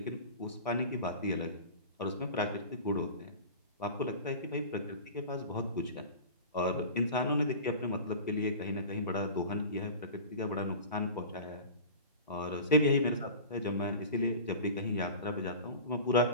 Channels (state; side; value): inverted; both; correlation -0.35